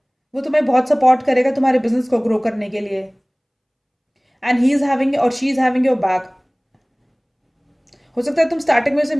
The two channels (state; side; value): identical; both; correlation 1.00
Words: वो तुम्हें बहुत सपोर्ट करेगा तुम्हारे बिजनेस को ग्रो करने के लिए, एंड ही इज़ हैविंग और she is having your back. हो सकता है तुम स्टार्टिंग में उसे